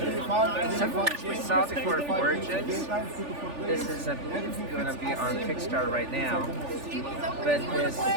Some of which we saw before Origins. This is, I believe, going to be on Kickstarter right now. But this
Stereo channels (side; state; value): left; late; 3.4 ms